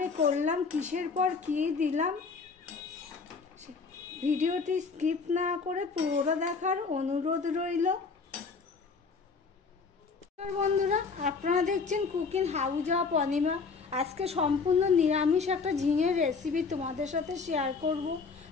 করলাম, কিসের পর কী দিলাম, ভিডিওটি স্কিপ না করে পুরোটা দেখার অনুরোধ রইল। বন্ধুরা, আপনারা দেখছেন কুকিং হাউস অফ অনিমা। আজকে সম্পূর্ণ নিরামিষ একটা ঝিঙের রেসিপি তোমাদের সাথে শেয়ার করব।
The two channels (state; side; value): quieter; right; 4.8 dB